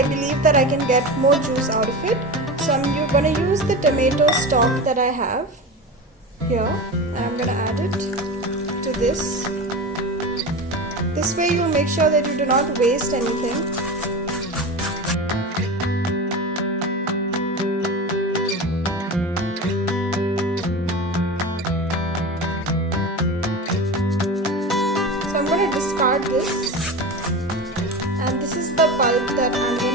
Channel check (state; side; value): normal; both; correlation 0.27